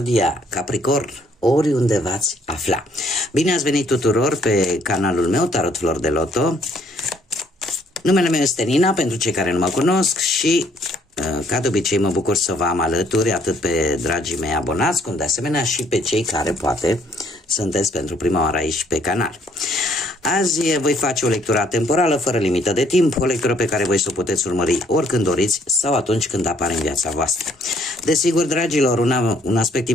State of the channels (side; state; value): both; normal; correlation 0.65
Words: Capricorn, oriunde v-ați afla. Bine ați venit tuturor pe canalul meu, Tarot Flor de Loto. Numele meu este Nina, pentru cei care nu mă cunosc și, ca de obicei, mă bucur să vă am alături, atât pe dragii mei abonați, cum de asemenea și pe cei care, poate, sunteți pentru prima oară aici pe canal. Azi voi face o lectură temporală, fără limită de timp, o lectură pe care voi să o puteți urmări oricând doriți sau atunci când apare în viața voastră. Desigur, dragilor, un aspect